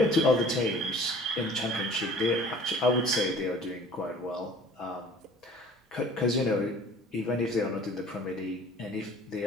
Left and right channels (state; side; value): normal; both; correlation 0.48